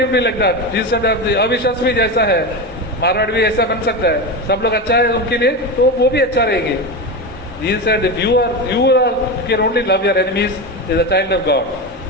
be like that. Jesus said अविश्वास भी जैसा है, मारवाड़ भी ऐसा बन सकता है. सब लोग अच्छा है उनके लिए तो वो भी अच्छा रहेंगे. Jesus said, if you can only love your enemies as a child of God.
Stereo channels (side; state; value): both; normal; correlation 0.19